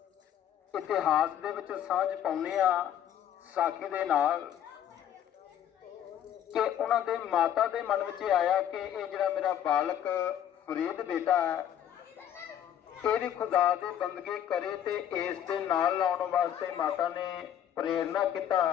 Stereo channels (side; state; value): right; quieter; 10.3 dB